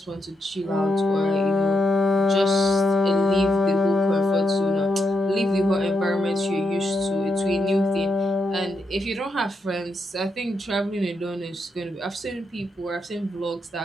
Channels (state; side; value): normal; both; correlation 0.82